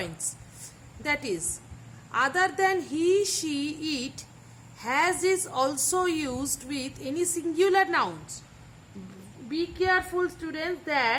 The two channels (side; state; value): both; identical; correlation 1.00